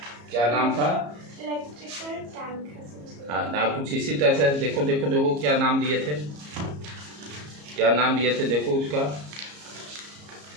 क्या नाम था? Electrical tank. हाँ ना, कुछ इसी तरह से देखो देखो देखो क्या नाम दिए थे, क्या नाम दिए थे, देखो उसका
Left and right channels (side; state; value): left; late; 34 ms